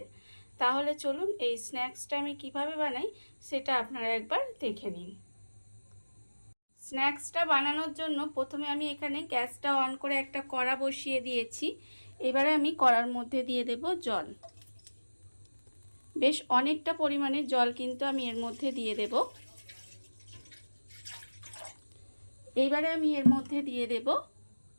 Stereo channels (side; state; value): both; inverted; correlation -1.00